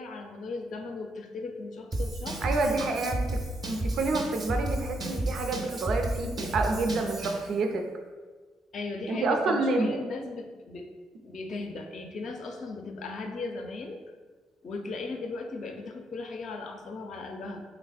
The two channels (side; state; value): both; normal; correlation 0.76